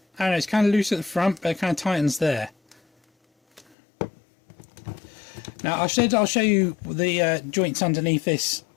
don't know, it's kind of loose at the front, but it kind of tightens there. Now I'll show you the joints underneath this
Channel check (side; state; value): right; drops out; at 3.8 s